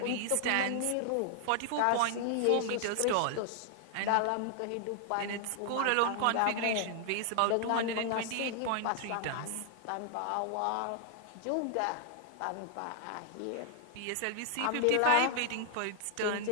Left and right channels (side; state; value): both; different; correlation 0.00